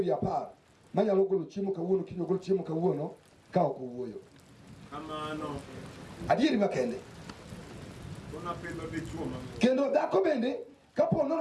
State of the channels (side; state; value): both; identical; correlation 1.00